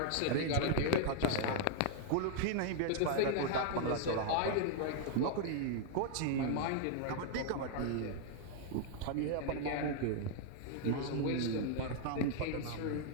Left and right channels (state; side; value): different; both; correlation 0.00